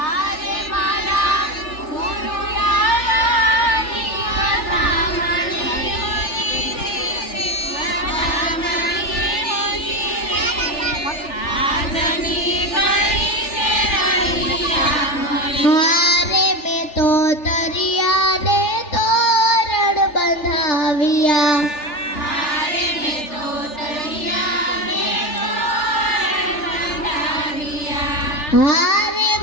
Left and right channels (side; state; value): right; late; 3.4 ms